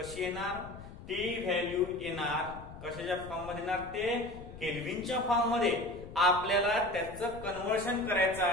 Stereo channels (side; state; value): left; noise; rumble, 14 dB below the sound